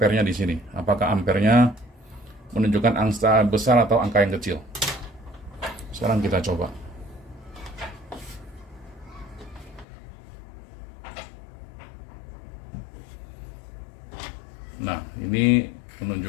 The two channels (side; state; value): right; drops out; at 9.9 s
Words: di sini. Apakah ampernya menunjukkan angka besar atau angka yang kecil? Sekarang kita coba. Nah, ini